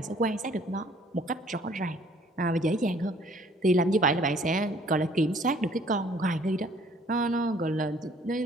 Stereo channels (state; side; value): normal; both; correlation 0.58